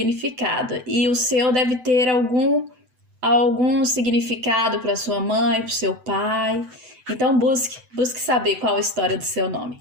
e o seu deve ter algum significado para sua mãe, para o seu pai. Então busque saber qual a história do seu nome.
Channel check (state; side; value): late; left; 7.9 ms